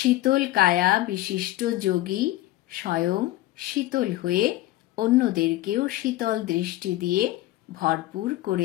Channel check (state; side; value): quieter; right; 16.5 dB